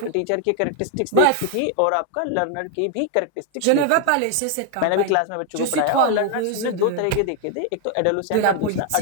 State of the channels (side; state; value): both; different; correlation 0.00